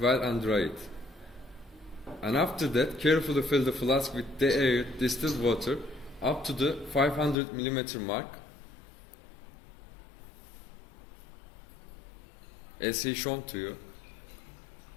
well and dry it. And after that, carefully fill the flask with the air distilled water up to the 500 mm mark, as he shown to you.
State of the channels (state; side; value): drops out; right; at 7.4 s